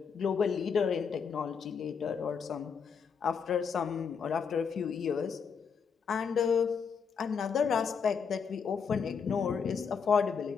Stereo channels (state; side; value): quieter; right; 6.3 dB